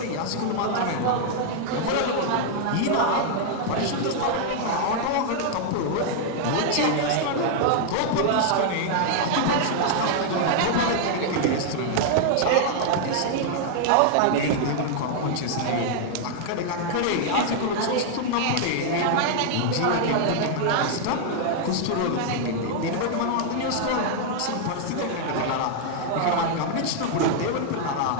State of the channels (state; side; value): different; both; correlation -0.01